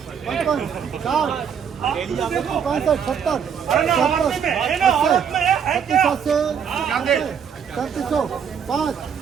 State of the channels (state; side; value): quieter; left; 7.5 dB